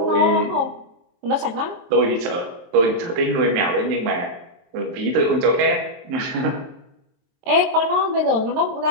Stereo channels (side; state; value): left; late; 22 ms